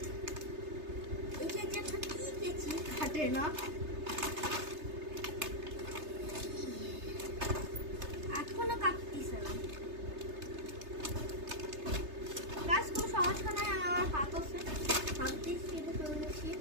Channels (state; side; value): late; left; 3.3 ms